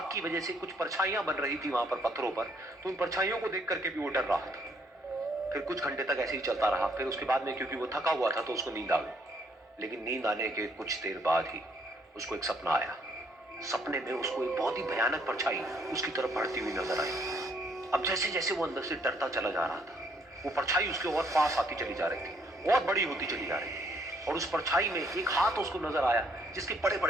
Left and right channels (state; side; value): normal; both; correlation 0.68